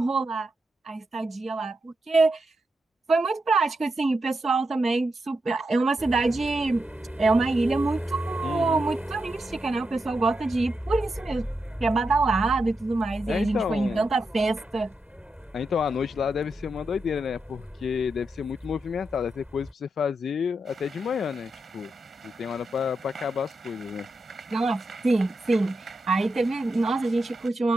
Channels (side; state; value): both; normal; correlation 0.86